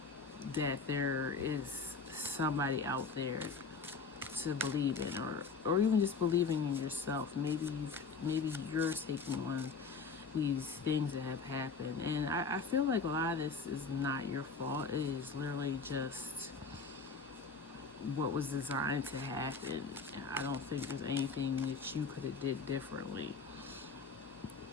that there is somebody out there to believe in, or even just believing in yourself. Maybe you're taking on these things that have happened, and I feel like a lot of this is not your fault. It is literally just what was designed to happen. I don't think there's anything that you could have did differently.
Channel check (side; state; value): right; quieter; 4.7 dB